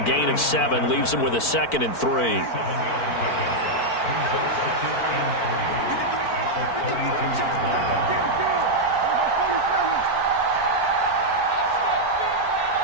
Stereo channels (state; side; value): late; right; 4.5 ms